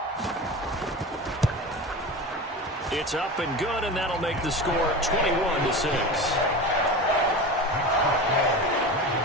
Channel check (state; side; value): normal; both; correlation 0.29